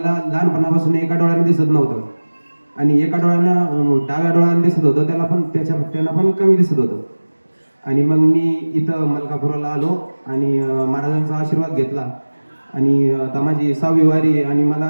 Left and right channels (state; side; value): inverted; both; correlation -1.00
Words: लहानपणापासून एका डोळ्याने दिसत नव्हतं आणि एका डोळ्यानं डाव्या डोळ्याने दिसत होतं, त्यांना पण कमी दिसत होतं. आणि मग मी इथं मलकापुराला आलो आणि महाराजांचा आशीर्वाद घेतला आणि आता माझी 6वी वारी. आणि